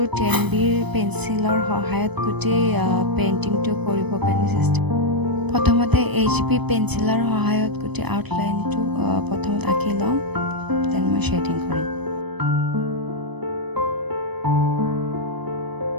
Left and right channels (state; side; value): late; left; 0.99 ms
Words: 10Bৰ পেঞ্চিলৰ সহায়ত গোটেই পেইণ্টিংটো কৰিবৰ কাৰণে চেষ্টা কৰিছোঁ। প্ৰথমতে HB পেঞ্চিলৰ সহায়ত গোটেই আউটলাইনটো প্ৰথমত আঁকি ল'ম, দেন মই শ্বেডিং কৰিম।